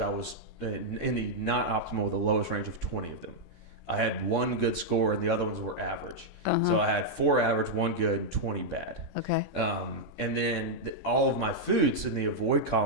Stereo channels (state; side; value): late; left; 3.6 ms